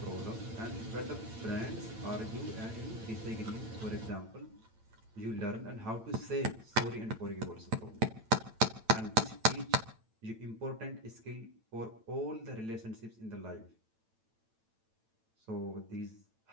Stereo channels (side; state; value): left; late; 8.9 ms